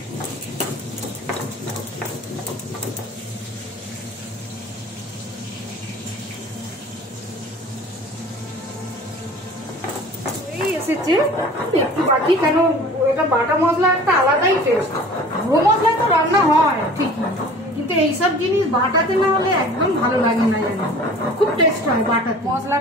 এসেছে একটু বাকি, কেন এটা বাটা মশলা একটা আলাদাই টেস্ট। গুঁড়ো মশলা তো রান্না হয় ঠিকই, কিন্তু এইসব জিনিস বাটাতে না হলে একদম ভালো লাগে না, জানি খুব টেস্ট হয় বাটাতে।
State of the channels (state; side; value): normal; both; correlation 0.44